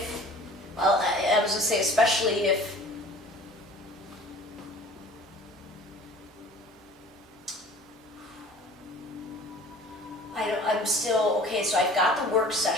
well, I was going to say especially if, I'm still, okay, so I've got the work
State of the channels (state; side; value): normal; both; correlation 0.46